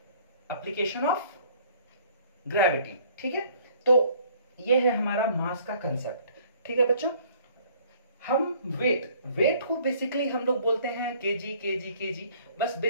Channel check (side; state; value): both; inverted; correlation -0.57